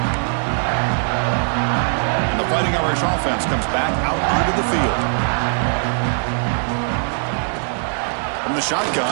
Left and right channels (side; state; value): left; silent; 66 dB below the other